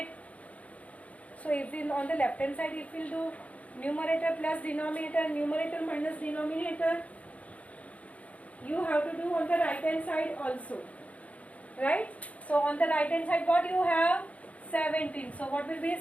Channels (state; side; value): late; right; 0.067 ms